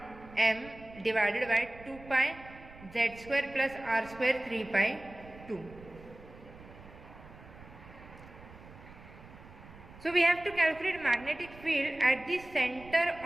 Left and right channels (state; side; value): noise; right; rumble, 19 dB below the sound